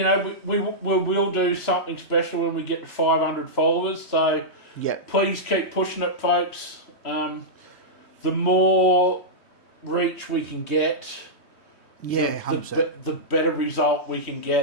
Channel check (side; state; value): right; late; 3.2 ms